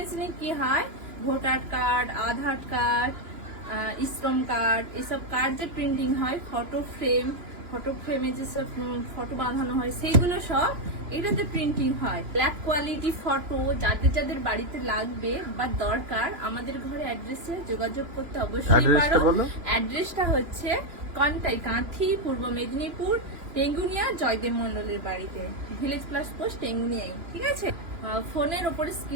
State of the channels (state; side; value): late; left; 3.0 ms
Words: কি হয়, ভোটার কার্ড, আধার কার্ড, শ্রম কার্ড, এসব কার্ড যে প্রিন্টিং হয়, ফটো ফ্রেমে যেসব ফটো বাঁধানো হয়, সেইগুলো সব এটাতে প্রিন্টিং হয়। ব্ল্যাক কোয়ালিটি ফটো যাদের যাদের বাড়িতে লাগবে বা দরকার, আমাদের ঘরে অ্যাড্রেসে যোগাযোগ করতে অবশ্যই পারো। অ্যাড্রেসটা হচ্ছে কন্টাই, কাঁথি, পূর্ব মেদিনীপুর, টেঙ্গুনিয়া, জয়দেব মন্ডলের বাড়িতে, ভিলেজ প্লাস পোস্ট টেঙ্গুনিয়ায়। ঠিক আছে, ফোনের ওপরে